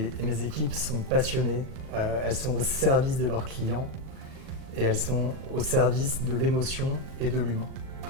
mes équipes sont passionnées, elles sont au service de leurs clients et elles sont au service de l'émotion et de l'humain.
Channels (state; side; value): late; left; 39 ms